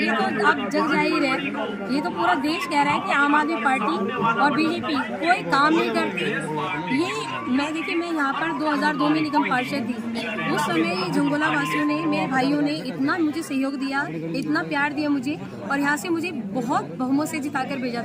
तो अब जग जाहिर है, ये तो पूरा देश कह रहा है कि आम आदमी पार्टी और बीजेपी कोई काम नहीं करती। ये मैं यहाँ पर 2002 में निगम पार्षद थी। उस समय झंगोला वासियों ने, मेरे भाइयों ने इतना मुझे सहयोग दिया, इतना प्यार दिया मुझे और यहाँ से मुझे बहुत बहुमत से जिताकर भेजा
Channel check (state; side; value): identical; both; correlation 1.00